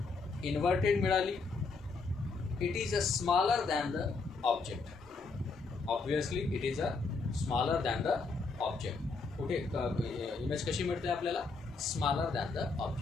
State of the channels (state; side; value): quieter; right; 4.2 dB